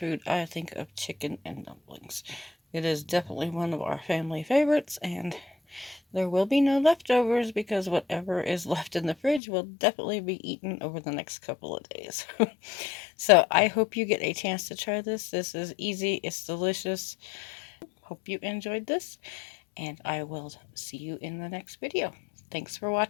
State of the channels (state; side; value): drops out; right; at 9.4 s